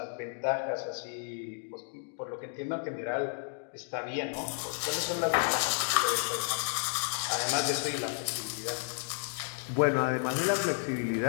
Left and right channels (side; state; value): right; silent; digital silence